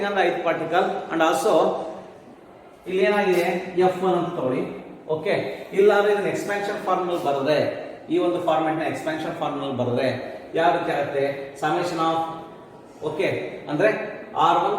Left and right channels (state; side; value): identical; both; correlation 1.00